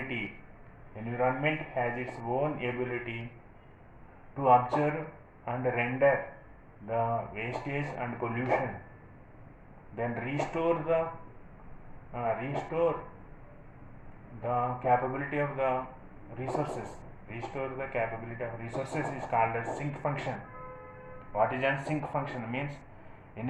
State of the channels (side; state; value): both; identical; correlation 1.00